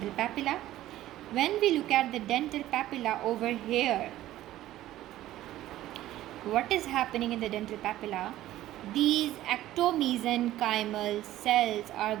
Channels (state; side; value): quieter; left; 14.4 dB